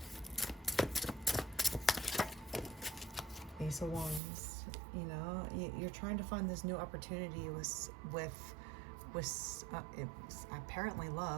Ace of Wands, you know, you're trying to find this new opportunity with it's apparently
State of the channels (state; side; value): drops out; left; at 4.2 s